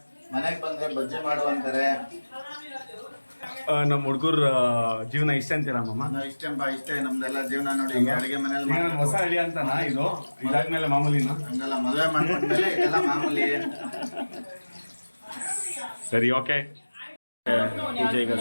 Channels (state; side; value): inverted; both; correlation -1.00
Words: ಮನೆಗೆ ಬಂದ್ರೆ ಬಜ್ಜಿ ಮಾಡುವಂತಾರೆ. ನಮ್ಮ ಹುಡುಗರ ಜೀವನ ಇಷ್ಟ ಅಂತೀರಾ ಮಾಮ? ಇಷ್ಟೇ ನಮ್ದೆಲ್ಲ ಜೀವನ. ನೋಡಿ ಅಡಿಗೆ ಮನೇಲಿ ಹೊಸ ಹಳ್ಳಿ ಅಂತನಾ ಇದು? ಇದಾದ್ಮೇಲೆ ಮಾಮೂಲಿನ? ಹಂಗಲ್ಲ, ಮದುವೆ ಮಾಡ್ಕೊಂಡ್ಮೇಲೆ ಇದೆಲ್ಲ ಮಾಮೂಲಿ. ಸರಿ, ಓಕೆ. ಪೂಜೆ ಈಗ